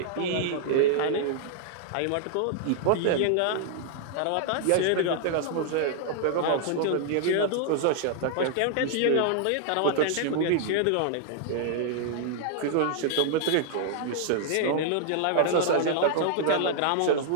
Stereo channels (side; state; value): both; different; correlation -0.01